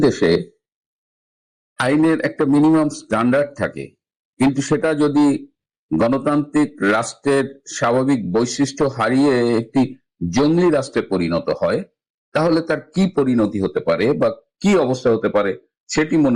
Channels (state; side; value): identical; both; correlation 1.00